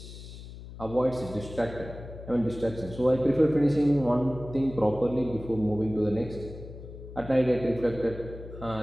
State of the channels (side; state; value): left; noise; hum, 14 dB below the sound